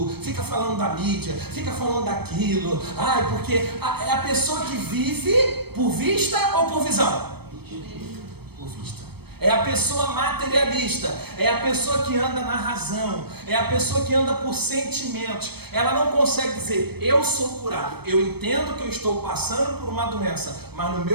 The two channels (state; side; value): late; left; 0.97 ms